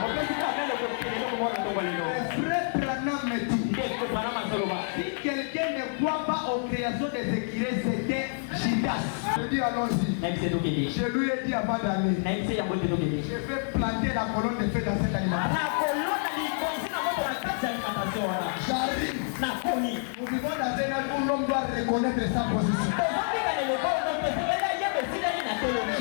Frère Branham me dit, si quelqu'un ne croit pas aux créations des écrits, c'était Judas. Je dis allons-y. Je lui ai dit avant d'aller, je vais planter la colonne de feu dans cette alimentation. J'arrive. Nous vivons dans un âge où l'homme doit reconnaître sa position.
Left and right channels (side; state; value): right; silent; 59 dB below the other